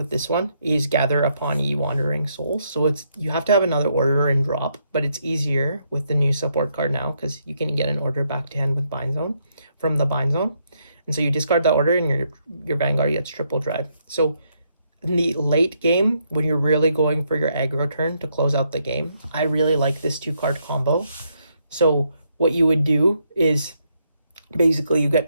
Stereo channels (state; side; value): inverted; both; correlation -0.76